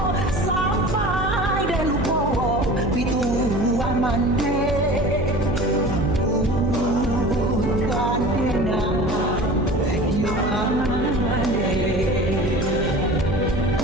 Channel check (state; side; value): noise; right; hum, 3 dB below the sound